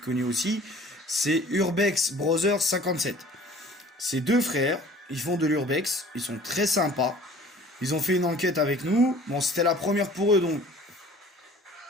aussi. C'est Urbex Brothers 57. C'est deux frères, ils font de l'urbex, ils sont très sympas. Ils ont fait une enquête avec nous. Bon, c'était la première pour eux, donc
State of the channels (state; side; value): normal; both; correlation 0.49